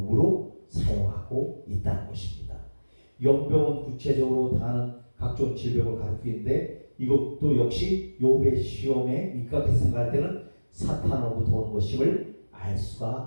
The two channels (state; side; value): inverted; both; correlation -1.00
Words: 사용하고 있다는 것입니다. 영병은 구체적으로 당하는 각종 질병을 가리키는데, 이것도 역시 욥의 시험에 입각해서 생각할 때는 사탄으로부터 온 것임을 알